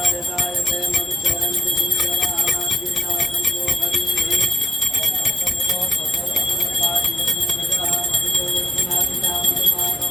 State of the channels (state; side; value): normal; both; correlation 0.78